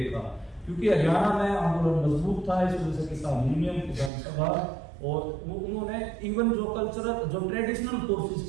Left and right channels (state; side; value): drops out; left; at 4.1 s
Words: क्योंकि हरियाणा में आंदोलन मजबूत था, इस वजह से किसान यूनियन, किसान सभा, और उन्होंने इवन जो कल्चरल जो ट्रेडिशनल